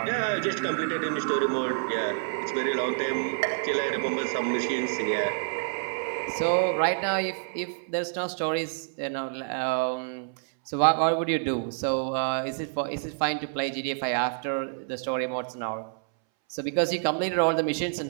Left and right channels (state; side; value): silent; left; 59 dB below the other